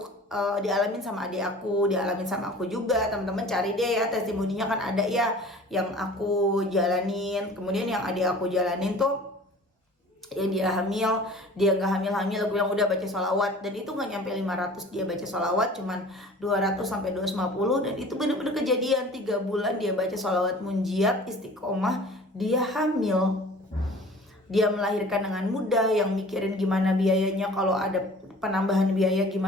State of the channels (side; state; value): both; normal; correlation 0.45